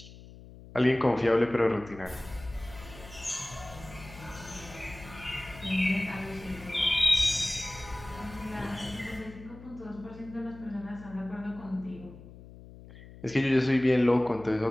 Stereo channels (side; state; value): left; noise; hum, 18 dB below the sound